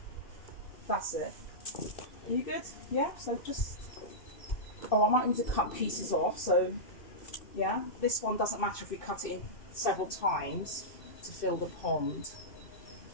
that's it. Are you good? Yeah, so just, I might need to cut pieces off, so yeah, this one doesn't matter if we cut it in several times to fill the pond.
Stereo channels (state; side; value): late; right; 2.6 ms